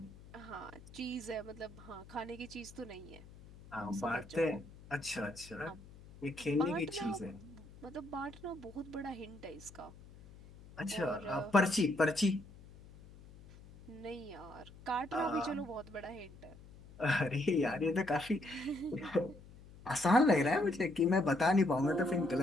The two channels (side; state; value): left; noise; hum, 20 dB below the sound